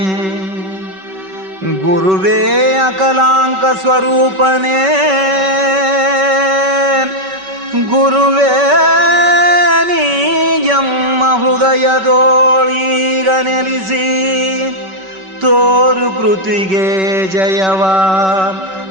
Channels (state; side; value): late; left; 5.2 ms